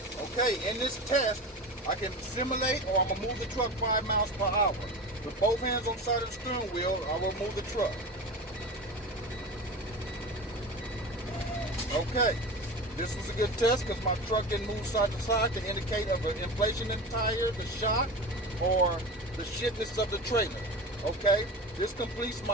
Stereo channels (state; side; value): normal; both; correlation 0.29